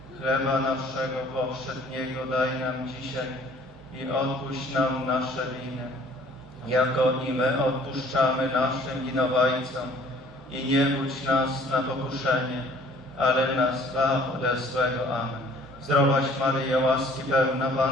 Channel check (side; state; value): both; normal; correlation 0.55